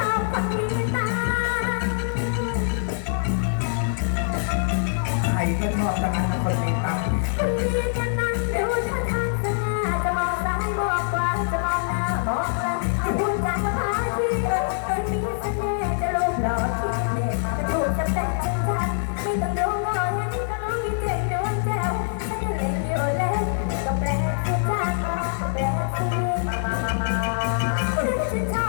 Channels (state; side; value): silent; right; digital silence